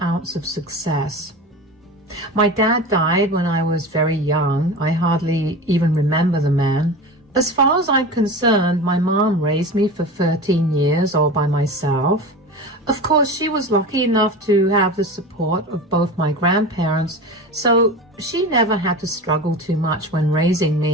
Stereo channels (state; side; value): normal; both; correlation 0.30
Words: of success. My dad died when I was very young. I hardly even remember the man. As far as I'm concerned, my mom raised me for 13 years all by myself. Of course, she was lucky enough to have the support of both my grandparents, so she never had to struggle too much when raising